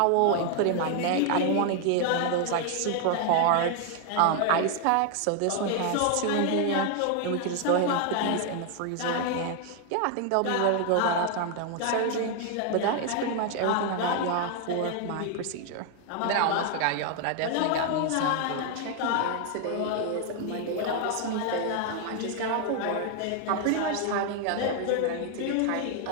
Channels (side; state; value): both; different; correlation 0.00